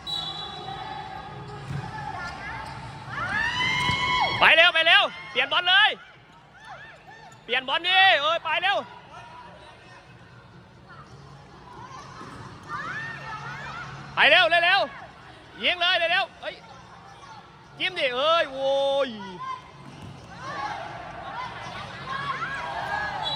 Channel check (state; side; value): identical; both; correlation 1.00